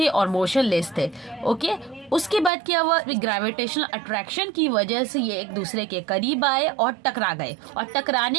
और मोशनलेस थे। ओके, उसके बाद क्या हुआ? ग्रेविटेशनल अट्रैक्शन की वजह से ये एक दूसरे के करीब आए और टकरा गए, और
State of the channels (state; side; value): drops out; left; at 2.5 s